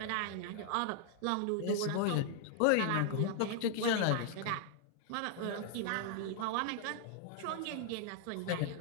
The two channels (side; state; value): both; different; correlation 0.00